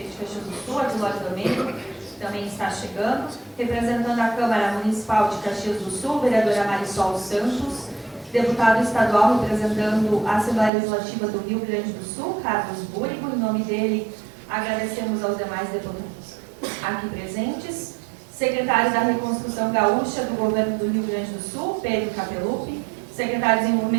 de Caxias do Sul, Adilóide Domênico, também está chegando, representando a Câmara Municipal de Caxias do Sul, vereadora Marisol Santos, deputado estadual representando a Assembleia Legislativa do Rio Grande do Sul, Carlos Búrigo. Em nome dele, agradecemos aos demais deputados aqui presentes. Secretário da Reconstrução Gaúcha do Governo do Rio Grande do Sul, Pedro Capelupi. Secretário de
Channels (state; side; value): drops out; left; at 10.7 s